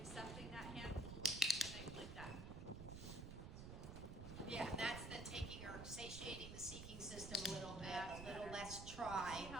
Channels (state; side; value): noise; right; rumble, 8 dB below the sound